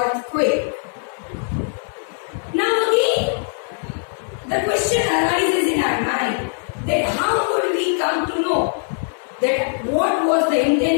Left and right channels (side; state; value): right; silent; 61 dB below the other